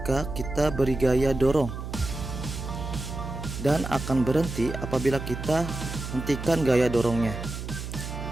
kita beri gaya dorong, dan akan berhenti apabila kita hentikan gaya dorongnya.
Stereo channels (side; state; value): right; noise; hum, 7 dB below the sound